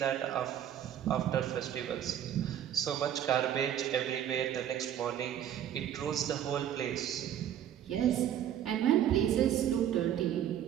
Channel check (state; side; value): quieter; left; 10.4 dB